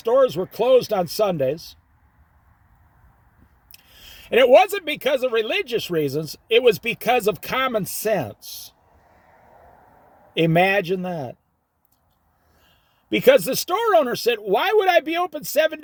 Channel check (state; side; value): identical; both; correlation 1.00